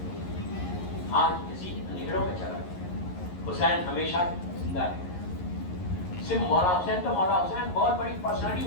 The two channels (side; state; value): right; late; 11 ms